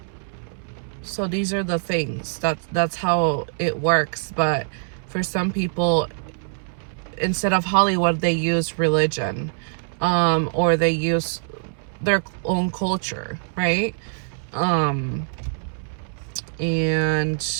So these are the things. That's how it works. But for some people, instead of Hollywood, they use religion, or they use their own culture, right? And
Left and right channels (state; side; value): silent; left; 63 dB below the other